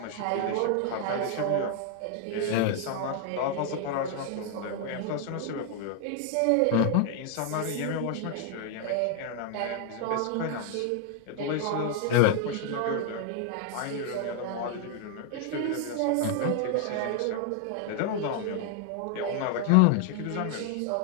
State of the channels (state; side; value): different; both; correlation 0.00